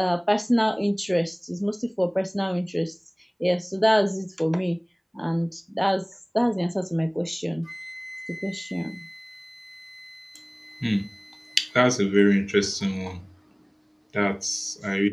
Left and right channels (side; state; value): both; identical; correlation 1.00